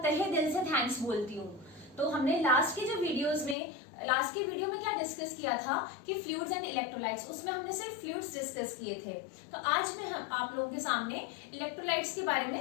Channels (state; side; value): drops out; right; at 3.6 s